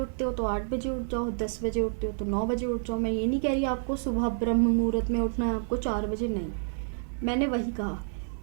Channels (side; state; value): left; silent; 59 dB below the other